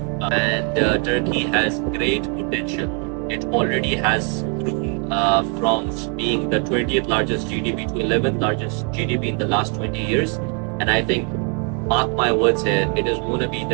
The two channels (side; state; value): left; quieter; 38.5 dB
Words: And Turkey has great potential. It already has grown from being the 20th largest GDP to 11th largest GDP in the last 20 years. And I think, mark my words here, it is going to be